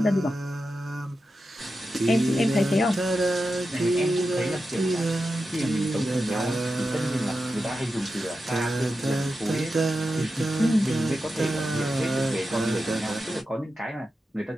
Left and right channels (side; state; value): both; normal; correlation 0.90